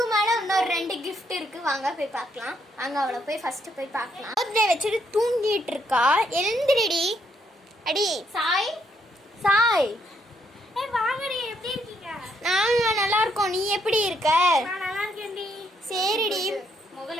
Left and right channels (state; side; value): normal; both; correlation 0.74